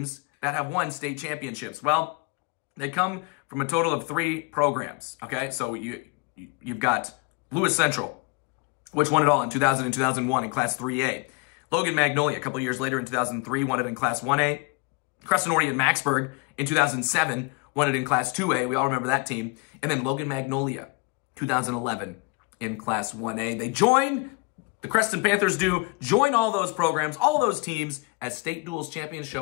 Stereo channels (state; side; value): quieter; right; 27.3 dB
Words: that have won state championships? Well, they come from a total of 3 programs, okay? So you've got Lewis Central, which won it all in 2000 and 2001 in Class 3A. Logan Magnolia, a couple years later in 2003, won it in Class 1A. Creston Oriented Maxburg in 2007 won it in Class 2A. We all remember that team. And then Logan Magnolia, 2011 in Class 1A. They join, the Creston Panthers do, join all those programs, all those teams as state duals champions.